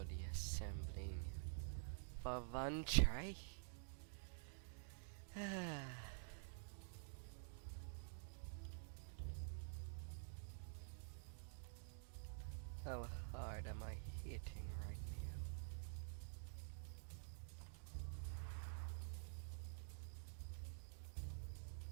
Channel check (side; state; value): left; silent; digital silence